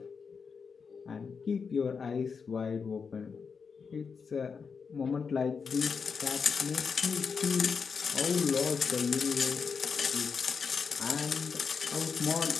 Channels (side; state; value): right; quieter; 5.7 dB